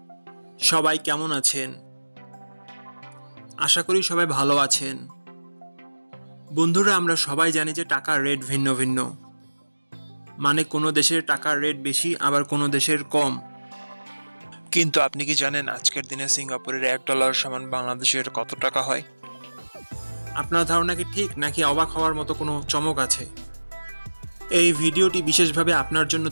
সবাই কেমন আছেন? আশা করি সবাই ভালো আছেন। বন্ধুরা, আমরা সবাই জানি যে টাকার রেট ভিন্ন ভিন্ন। মানে কোনো দেশের টাকার রেট বেশি, আবার কোনো দেশের কম। কিন্তু আপনি কি জানেন আজকের দিনে সিঙ্গাপুরের $1 সমান বাংলাদেশের কত টাকা হয়? আপনার ধারণা কি ঠিক, নাকি অবাক হওয়ার মতো কোনো চমক আছে? এই ভিডিওটি বিশেষভাবে আপনার জন্য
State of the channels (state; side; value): inverted; both; correlation -1.00